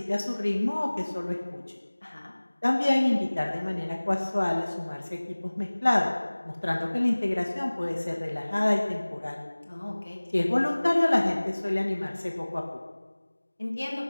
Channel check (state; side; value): inverted; both; correlation -1.00